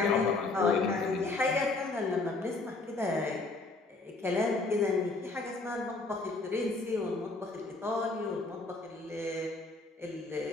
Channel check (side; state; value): right; quieter; 3.4 dB